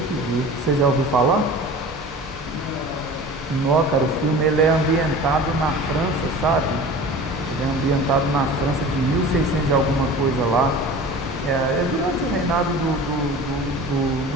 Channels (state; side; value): normal; both; correlation 0.38